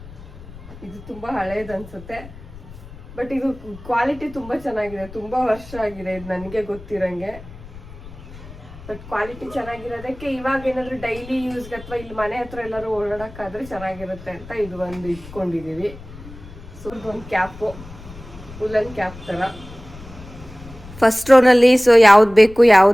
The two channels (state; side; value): noise; left; rumble, 17 dB below the sound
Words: ಇದು ತುಂಬಾ ಹಳೇದು ಅನ್ಸುತ್ತೆ, ಬಟ್ ಇದು ಕ್ವಾಲಿಟಿ ತುಂಬಾ ಚೆನ್ನಾಗಿದೆ. ತುಂಬಾ ವರ್ಷ ಆಗಿದೆ ಇದು ನನಗೆ ಗೊತ್ತಿರಂಗೆ. ಬಟ್ ಕ್ವಾಲಿಟಿ ಚೆನ್ನಾಗಿರೋದಕ್ಕೆ ಇವಾಗ ಏನಾದ್ರು ಡೈಲಿ ಯೂಸ್ಗೆ ಅಥವಾ ಇಲ್ಲಿ ಮನೆ ಹತ್ರ ಎಲ್ಲರೂ ಓಡಾಡಕ್ಕಾದ್ರೆ ಚೆನ್ನಾಗಿರುತ್ತೆ ಅಂತ ಇದು ಒಂದು ಇಟ್ಕೊಂಡಿದೀವಿ. ಸೊ ಇದೊಂದು ಕ್ಯಾಪು, ಉಲ್ಲನ್ ಕ್ಯಾಪ್ ತರ. ಫಸ್ಟ್ ರೋನಲ್ಲಿ ಸೊ ಯಾವ್ದು ಬೇಕು